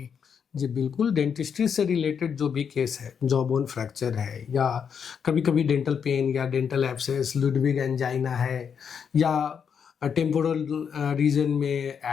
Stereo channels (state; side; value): quieter; right; 7.1 dB